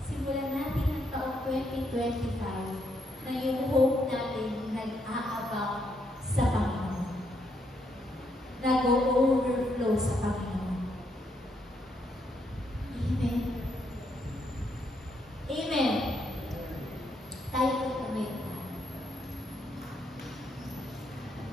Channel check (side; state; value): both; normal; correlation 0.76